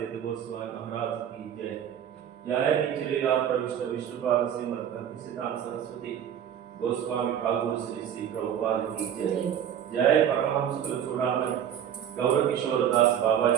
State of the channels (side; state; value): left; quieter; 9.4 dB